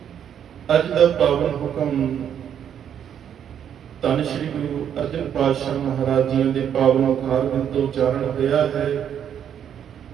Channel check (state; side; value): quieter; left; 9.0 dB